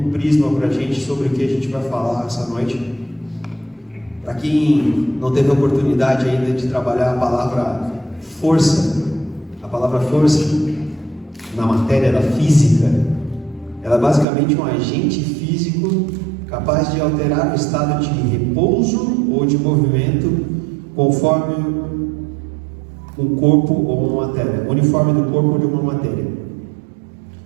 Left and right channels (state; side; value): drops out; left; at 14.2 s